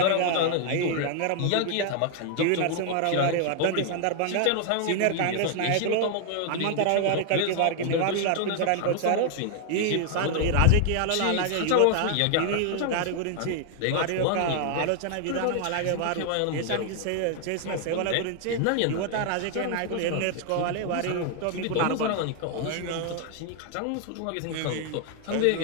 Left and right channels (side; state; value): both; different; correlation 0.00